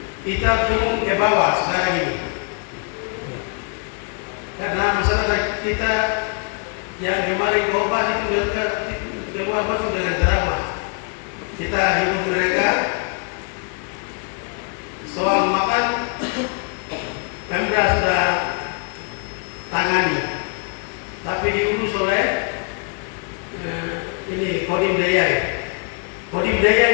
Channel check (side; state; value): right; quieter; 37.7 dB